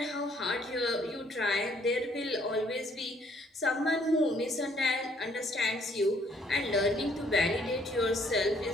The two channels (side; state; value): both; normal; correlation 0.64